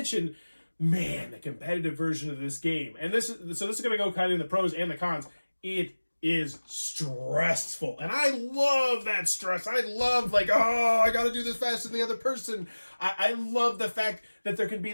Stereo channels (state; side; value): inverted; both; correlation -1.00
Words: man, the competitive version of this game. And this is going to go kind of in the pros and the cons. It is stressful, and I love that stress. I love like, oh, I gotta do this faster than the other person. I love the fact that there can be